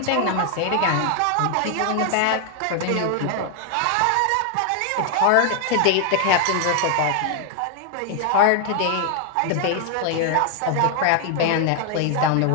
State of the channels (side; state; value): both; different; correlation 0.00